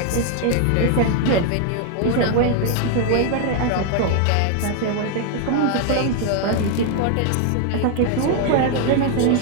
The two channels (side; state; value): both; different; correlation 0.01